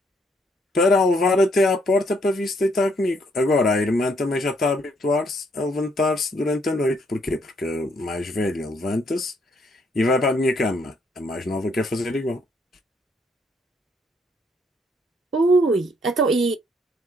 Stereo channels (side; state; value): both; normal; correlation 0.70